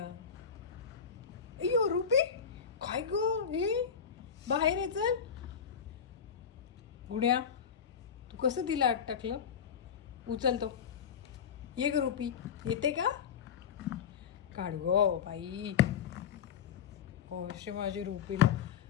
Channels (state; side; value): quieter; right; 7.4 dB